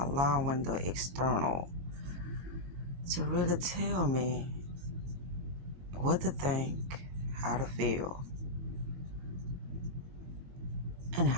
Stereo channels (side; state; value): left; late; 22 ms